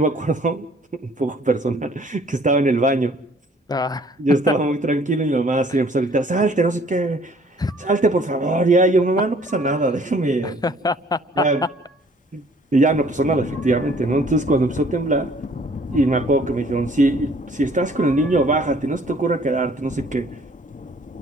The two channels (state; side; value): normal; both; correlation 0.57